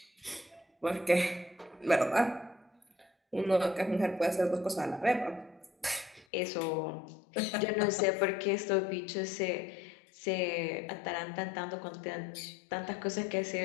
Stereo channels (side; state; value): right; drops out; at 6.2 s